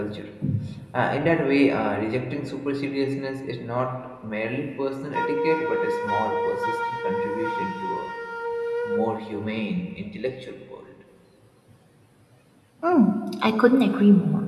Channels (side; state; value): both; identical; correlation 1.00